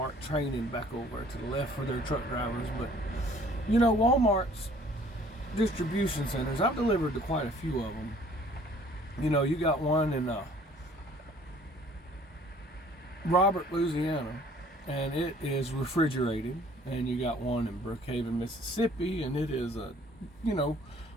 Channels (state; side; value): normal; both; correlation 0.56